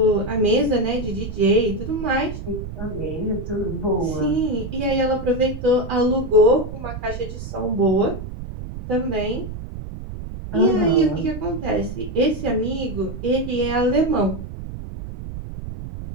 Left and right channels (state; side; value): noise; right; rumble, 9 dB below the sound